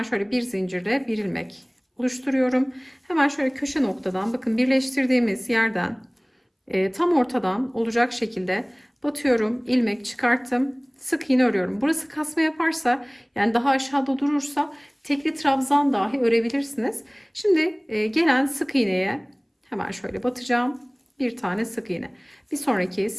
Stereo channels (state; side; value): identical; both; correlation 1.00